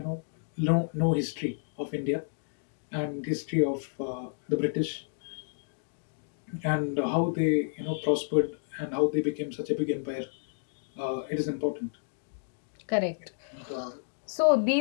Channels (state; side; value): silent; right; digital silence